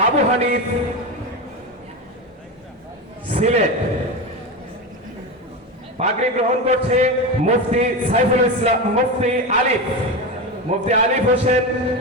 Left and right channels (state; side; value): normal; both; correlation 0.19